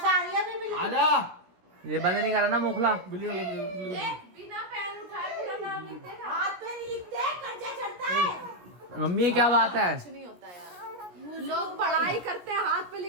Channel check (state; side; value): late; left; 17 ms